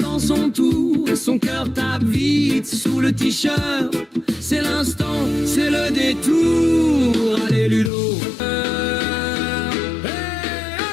son tour, son cœur tape vite sous le t-shirt. C'est l'instant, c'est le détour. Allez Ludo, hey,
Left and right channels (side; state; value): right; drops out; at 7.9 s